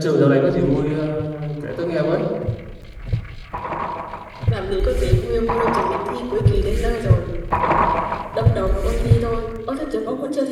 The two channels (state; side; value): identical; both; correlation 1.00